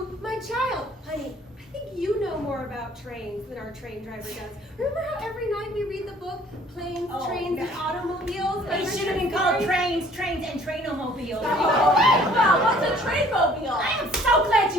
my child? Honey, I think you know more about trains than our train driver does. Remember how every night we read the book, Planes, Trains, and Automobiles? It should have been called Trains, and Trainomobiles. Well, what's a trainmobile? I am so glad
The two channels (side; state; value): both; normal; correlation 0.56